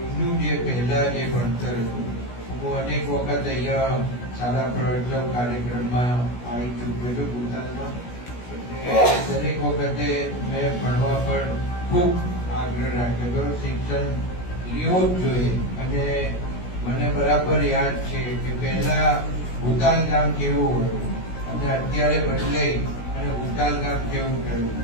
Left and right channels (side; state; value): right; late; 16 ms